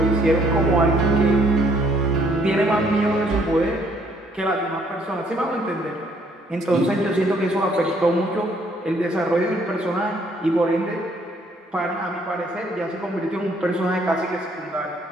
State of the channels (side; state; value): both; normal; correlation 0.65